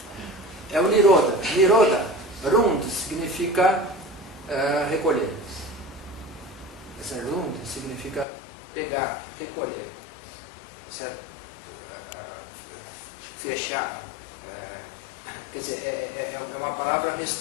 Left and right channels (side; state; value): right; drops out; at 8.2 s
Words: É o Nirodha. Nirodha, Rund, significa recolher. Essa Rund significa pegar, recolher. Certo? Fechar. Quer dizer, é uma palavra